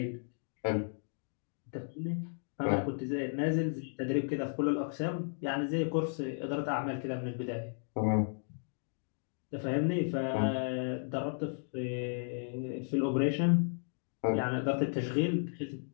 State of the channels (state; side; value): silent; right; digital silence